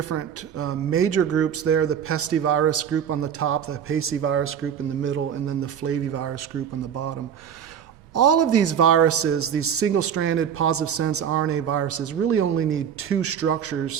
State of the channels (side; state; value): left; quieter; 8.4 dB